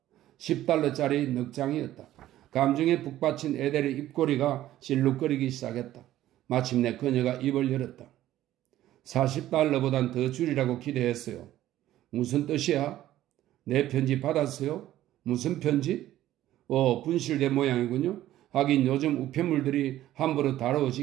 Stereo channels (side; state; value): left; quieter; 13.7 dB